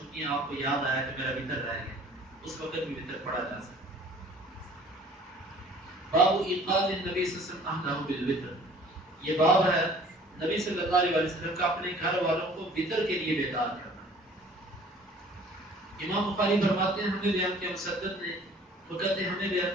ہیں، آپ کو یاد آیا کہ میرا وتر رہ گیا، اس وقت بھی وتر پڑھا جا سکتا. باب ایقاظ النبی صلی اللہ علیہ وسلم بالوتر، یہ باب ہے نبی صلی اللہ علیہ وسلم کا اپنے گھر والوں کو وتر کے لیے بیدار کرنا. امام بخاری فرماتے ہیں ہمیں بیان کیا مسدد نے، وہ کہتے ہیں ہمیں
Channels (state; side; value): normal; both; correlation 0.51